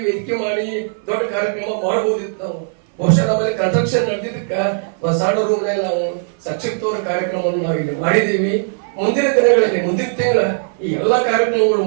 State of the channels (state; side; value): silent; left; 58 dB below the other